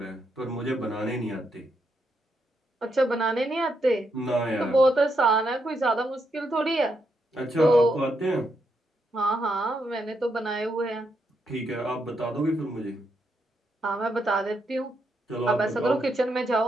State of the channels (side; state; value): both; normal; correlation 0.80